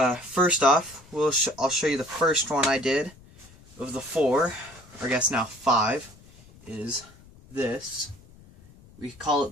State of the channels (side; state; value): left; noise; rumble, 24 dB below the sound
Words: off, I'll show you the first one I did of the four, or I guess now 5, is this. We call